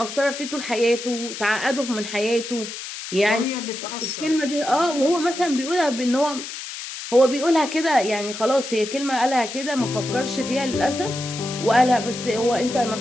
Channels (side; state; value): left; noise; hiss, 9 dB below the sound